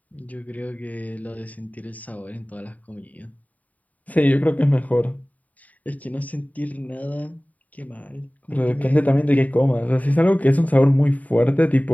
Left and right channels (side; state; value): right; late; 0.072 ms